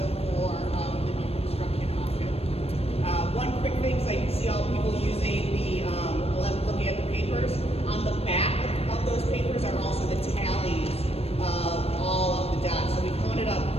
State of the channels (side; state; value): right; late; 0.29 ms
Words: for the new construction option. One quick thing, so you can see all people using the, looking at the papers. On the back of those papers are also the tallies of all of the dots. So we counted up